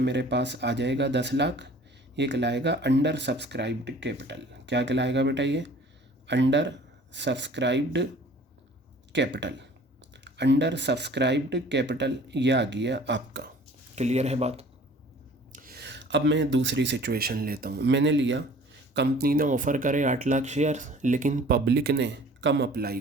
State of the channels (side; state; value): both; normal; correlation 0.50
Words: पास आ जाएगा 10 लाख। ये कहलाएगा अंडर सब्सक्राइब्ड कैपिटल। क्या कहलाएगा बेटा? ये under subscribed capital. Under subscribed capital ये आ गया आपका। क्लियर है बात? अब मैं दूसरी सिचुएशन लेता हूँ। मैंने लिया कंपनी ने ऑफ़र करे 8 लाख शेयर, लेकिन पब्लिक ने कम अप्लाई